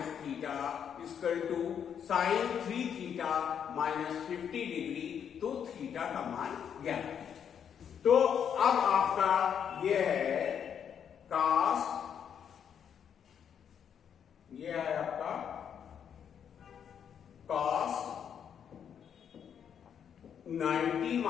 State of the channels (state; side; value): quieter; right; 8.2 dB